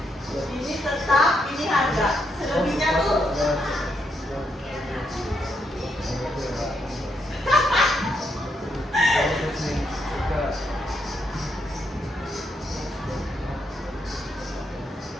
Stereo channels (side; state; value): both; normal; correlation 0.79